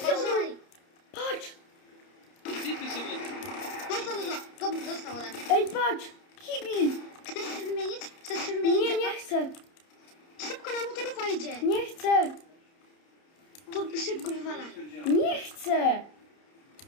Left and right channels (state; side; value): late; right; 30 ms